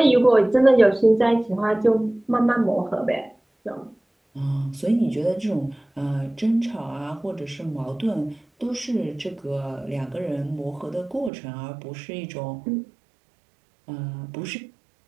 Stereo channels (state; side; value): drops out; left; at 11.3 s